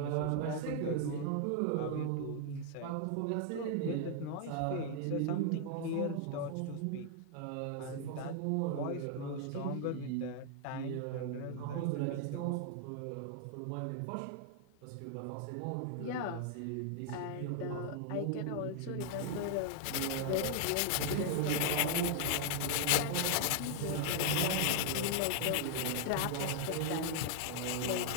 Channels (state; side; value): different; both; correlation 0.00